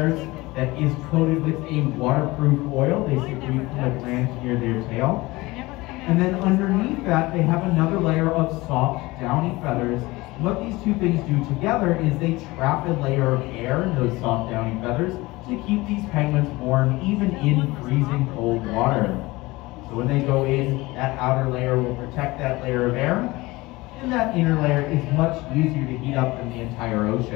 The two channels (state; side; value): quieter; right; 21.1 dB